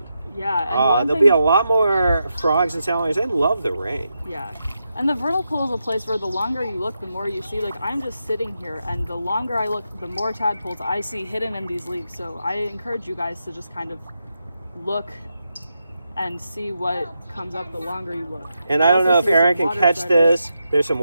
Yeah, and There'll be a lot more frogs and salamanders. They love the rain. Yeah. And the vernal pool is a place where the longer you look, the more you see. Like, I'm just sitting here, and the longer I look, the more tadpoles I see hidden in these leaves. So I encourage you guys to just kind of look and see what comes up the longer you look. And I don't also know if see Aaron some can water catch striders. this. There's some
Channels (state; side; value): inverted; both; correlation -0.86